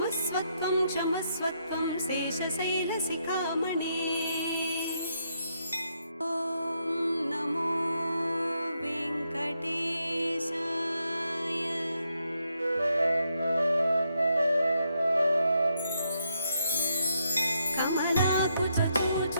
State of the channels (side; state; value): both; inverted; correlation -0.78